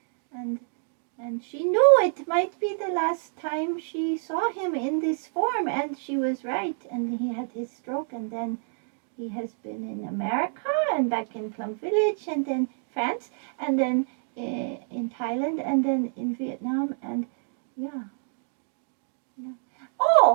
and she knew it might be the last time she saw him in this form, and she was right. And he had his stroke, and then he has been in America and back in Plum Village, and then France, and then in Thailand, and then in Vietnam, and yeah.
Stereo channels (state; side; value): silent; left; digital silence